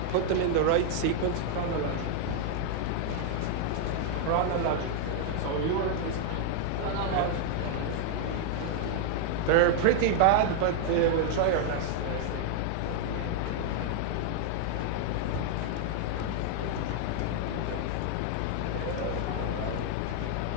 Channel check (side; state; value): both; different; correlation -0.01